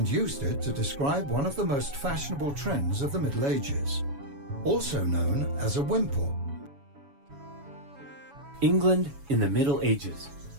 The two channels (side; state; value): left; late; 7.1 ms